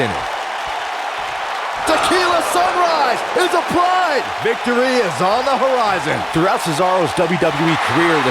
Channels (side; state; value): both; identical; correlation 1.00